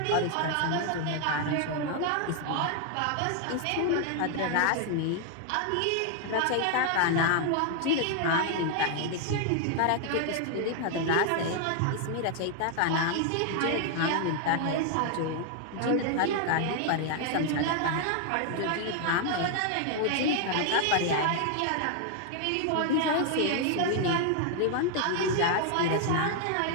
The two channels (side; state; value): both; different; correlation 0.00